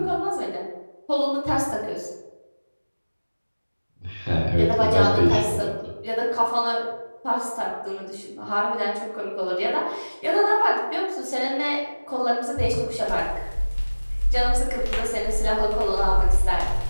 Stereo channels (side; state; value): both; inverted; correlation -1.00